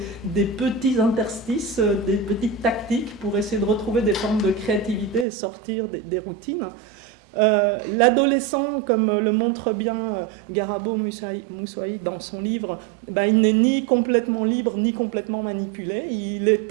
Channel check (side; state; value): left; drops out; at 5.2 s